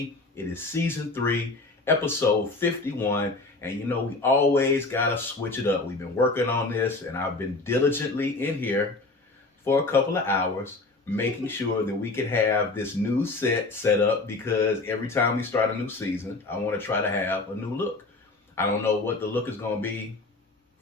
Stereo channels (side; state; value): right; quieter; 3.4 dB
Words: it is season 3, episode 51. And you know, we always gotta switch it up. We've been working on this, and I've been diligently in here for a couple of hours, making sure that we could have this new set up, because every time we start a new season, I want to try to have a new look. I don't know what the look is going to be